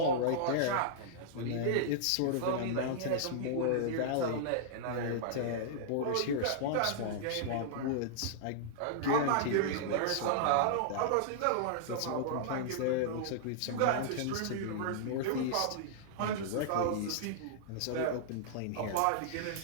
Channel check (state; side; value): different; both; correlation -0.02